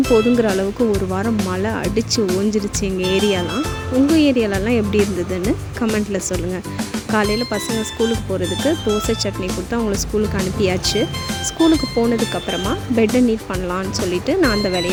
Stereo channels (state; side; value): identical; both; correlation 1.00